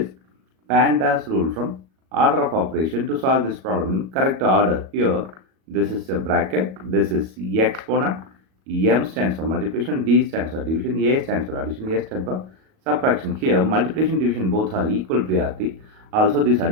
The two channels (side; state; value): left; late; 37 ms